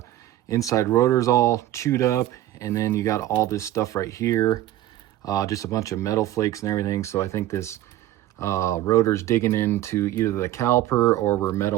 inside rotor is all chewed up, and then you got all this stuff right here, just a bunch of metal flakes and everything. So I think this rotor's digging into either the caliper or we're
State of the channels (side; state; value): left; quieter; 14.1 dB